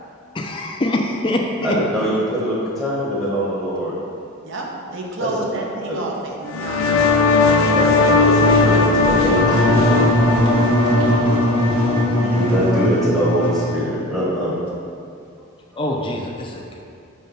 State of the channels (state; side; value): normal; both; correlation 0.32